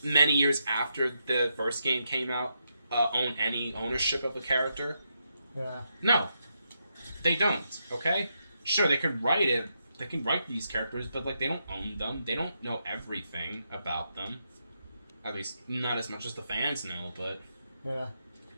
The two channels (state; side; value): inverted; both; correlation -0.82